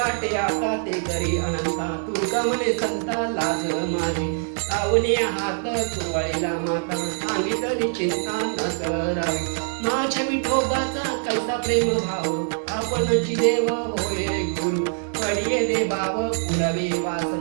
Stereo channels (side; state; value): left; silent; 63 dB below the other